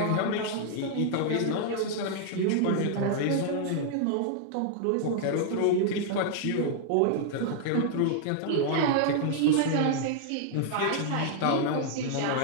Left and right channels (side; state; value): both; different; correlation -0.01